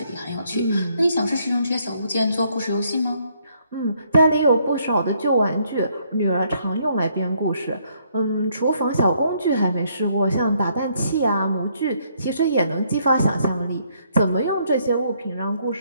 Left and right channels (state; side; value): inverted; both; correlation -0.70